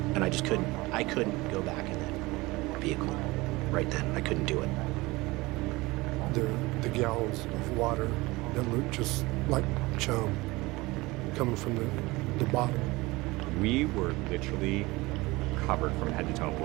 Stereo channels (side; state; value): left; quieter; 21.7 dB